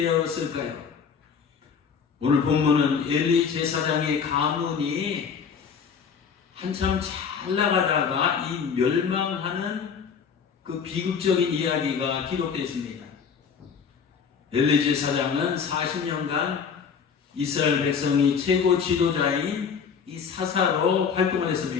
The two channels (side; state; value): right; quieter; 6.5 dB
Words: 오늘 본문은 엘리 제사장의 가문이 한참 잘 나가다가 이 멸망하는 그 비극적인 이야기가 기록되어 있습니다. 엘리 제사장은 40년간 이스라엘 백성이 최고 지도자인 이 사사로 활동을